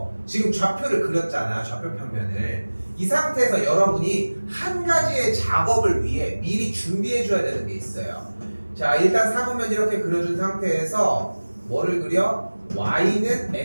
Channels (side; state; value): both; inverted; correlation -1.00